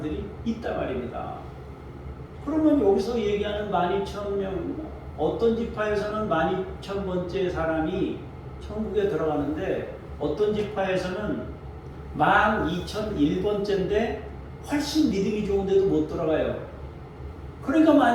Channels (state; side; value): identical; both; correlation 1.00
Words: 있단 말입니다. 그러면 여기서 얘기하는 12,000명, 어떤 지파에서는 12,000번째 사람이 천국에 들어가는데 어떤 지파에서는 12,001번째인데 훨씬 믿음이 좋은데도 못 들어가요. 그러니까